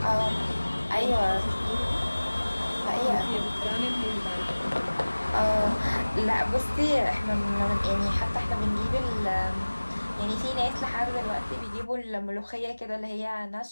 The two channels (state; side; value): inverted; both; correlation -1.00